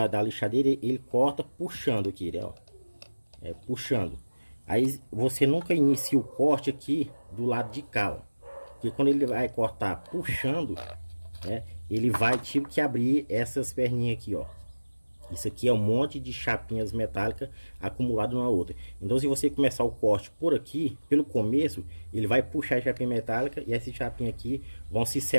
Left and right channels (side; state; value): both; inverted; correlation -1.00